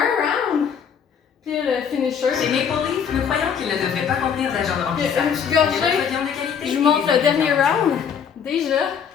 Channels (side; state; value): right; quieter; 7.4 dB